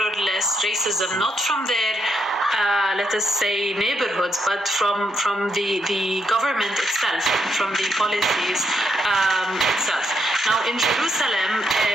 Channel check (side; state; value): both; normal; correlation 0.78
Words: less racism, not from their, let us say, neighborhoods, but from the government itself, from the policies itself. Now, in Jerusalem,